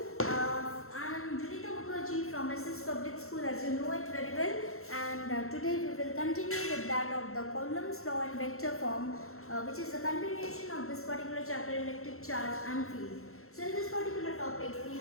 I am Junita Mukherjee from SS Public School, as you know it very well, and today we will continue with that of the Coulomb's law in vector form, which is a continuation of this particular chapter, electric charge and field. So in this particular topic we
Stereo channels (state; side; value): late; right; 0.63 ms